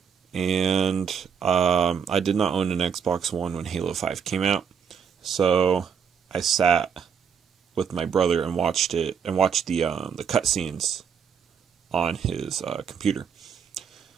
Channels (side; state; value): left; quieter; 7.1 dB